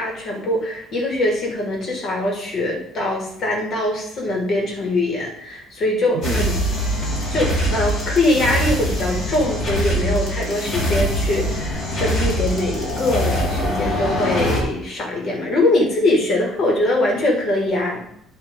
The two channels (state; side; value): normal; both; correlation 0.59